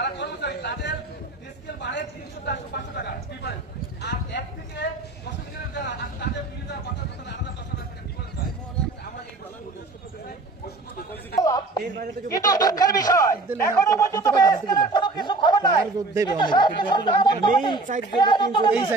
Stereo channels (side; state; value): left; quieter; 3.3 dB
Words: কর্মচারী তাদের স্কেল বাড়ে 300-500 টাকা ডিফারেন্স, আর 1 থেকে 10 গ্রেডের যারা তাদের 2000-5000 আলাদা 10,000 টাকা ডিফারেন্স হয়। আমরা এই কিন্তু দুঃখের বিষয় এখনো পর্যন্ত স্কেলের কোনো কিছু খবর নাই।